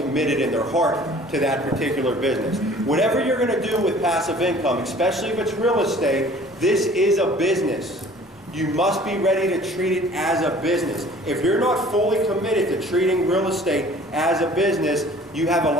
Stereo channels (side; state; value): both; normal; correlation 0.50